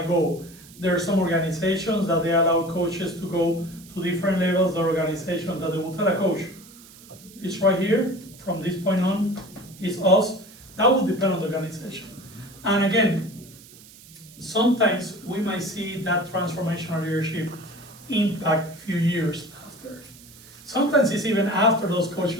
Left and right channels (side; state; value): right; noise; hiss, 21 dB below the sound